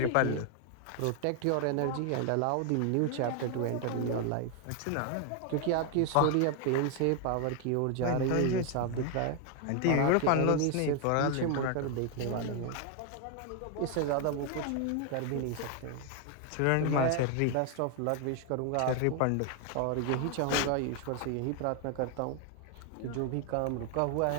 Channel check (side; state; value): both; different; correlation 0.00